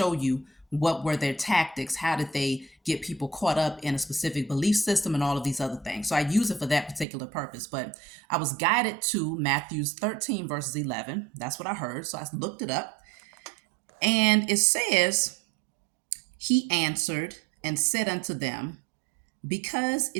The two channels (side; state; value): left; drops out; at 7.1 s